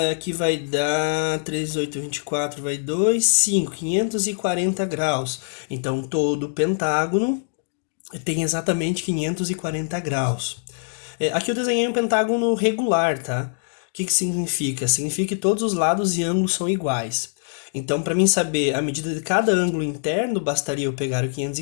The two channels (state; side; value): silent; right; digital silence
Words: que vai dar 3, 8, 24, vai 2, 5, 540 graus. Então, todo pentágono tem exatamente 540 graus. Aqui eu desenhei um pentágono regular, tá? O que significa? Significa que todos os lados e ângulos são iguais. Então, para mim saber a medida de cada ângulo interno, bastaria eu pegar o